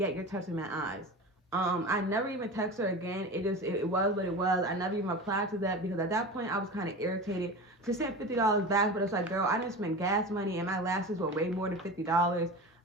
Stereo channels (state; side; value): normal; both; correlation 0.30